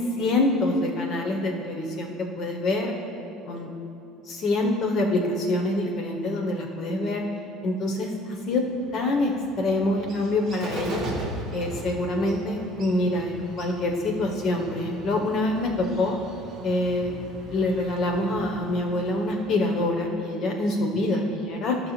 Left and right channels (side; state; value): both; normal; correlation 0.54